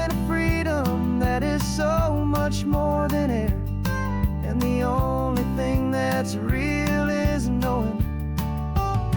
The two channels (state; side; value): identical; both; correlation 1.00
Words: a freedom that is so much more than air. And the only thing that's real is knowing